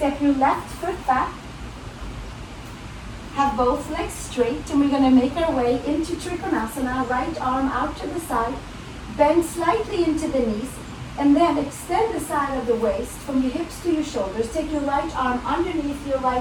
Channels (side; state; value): both; identical; correlation 1.00